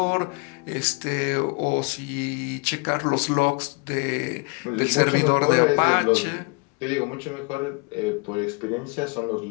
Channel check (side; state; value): right; quieter; 31.5 dB